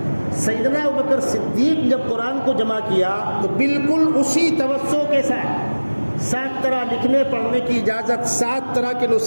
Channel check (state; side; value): inverted; both; correlation -1.00